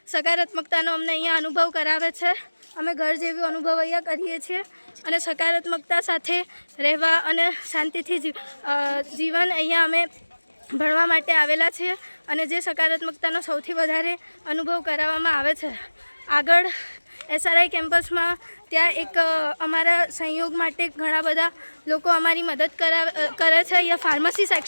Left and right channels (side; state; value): both; inverted; correlation -1.00